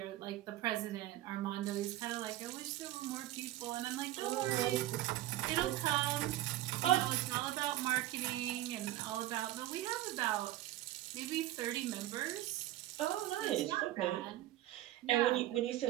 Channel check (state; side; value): quieter; left; 15.0 dB